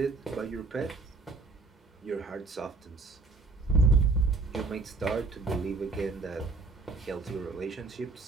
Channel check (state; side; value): quieter; left; 3.8 dB